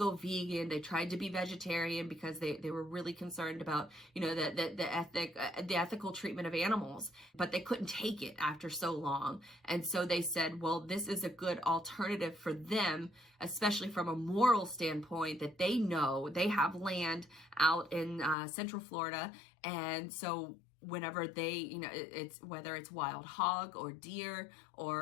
vegan. They tried to be vegetarian because they were really concerned about, the ethical treatment of animals, but they couldn't take it after so long. And so they said, well, this is a good alternative for them, especially from a moral standpoint, that they know they have land out in Central Florida. And so whenever they, it's whether it's wild hog or deer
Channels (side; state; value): right; drops out; at 18.4 s